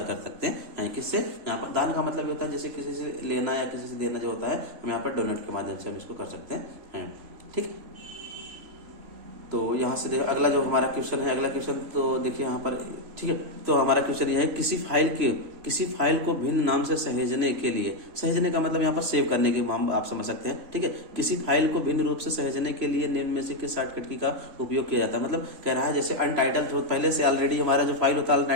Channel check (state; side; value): late; left; 3.0 ms